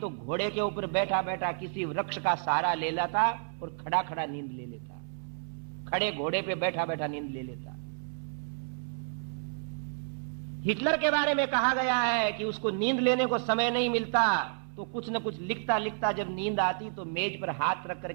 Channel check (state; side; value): silent; left; 57 dB below the other